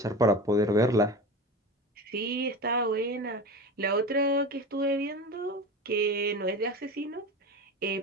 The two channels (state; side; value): normal; both; correlation 0.29